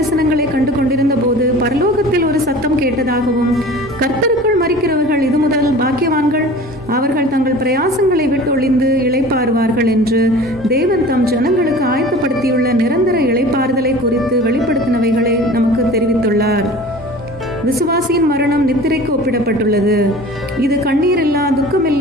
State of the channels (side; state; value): both; normal; correlation 0.41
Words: கண்டு கொண்டிருந்த போது பரலோகத்தில் ஒரு சத்தம் கேட்டதாகவும், கர்த்தருக்குள் மரிக்கிறவர்கள் இது முதல் பாக்கியவான்கள், அவர்கள் தங்கள் பிரயாசங்களை விட்டு ஒளிந்து இளைப்பாறுவார்கள் என்று தேவன் தம் ஜனங்களுக்கு ஆயத்தப்படுத்தியுள்ள நிரந்தர இளைப்பாறுதலை குறித்து வெளிப்படுத்தினவைகளை நமக்கு தெரிவித்துள்ளார். விசுவாசியின் மரணம் நித்திரைக்கு ஒப்பிடப்பட்டுள்ளது. இது கண்ணீரில்லா,